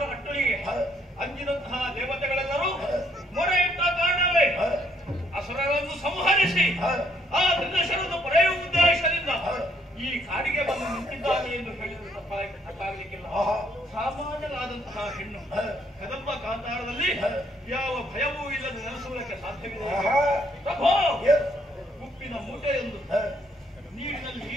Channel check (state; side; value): normal; both; correlation 0.69